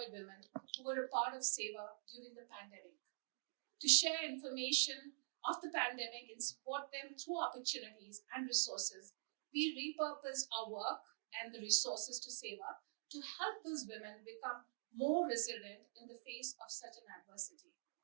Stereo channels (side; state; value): left; silent; digital silence